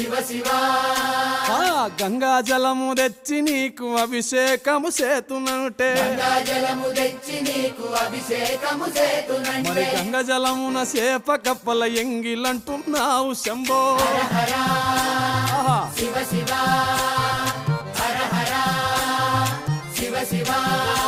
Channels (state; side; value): identical; both; correlation 1.00